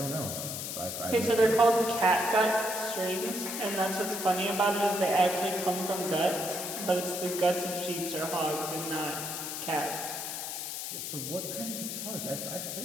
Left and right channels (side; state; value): left; noise; hiss, 5 dB below the sound